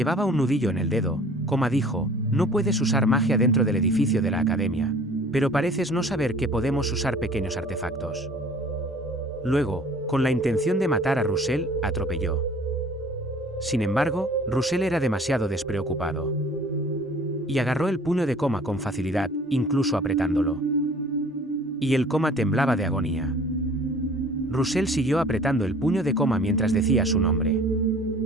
un nudillo en el dedo, Coma dijo: no puedes usar magia dentro del edificio de la academia, pero pareces no saber que podemos usar pequeños artefactos. Luego, con la intención de matar a Russell, atropelló. Sin embargo, Russell era demasiado despreocupado. Y agarró el puño de Coma con facilidad, incluso apretándolo. Y el Coma temblaba de agonía. Russell siguió apretando el puño de Coma mientras decía su nombre.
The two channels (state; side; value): normal; both; correlation 0.50